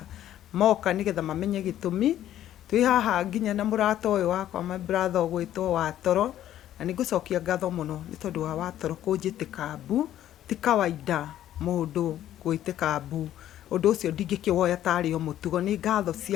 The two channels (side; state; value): right; quieter; 12.1 dB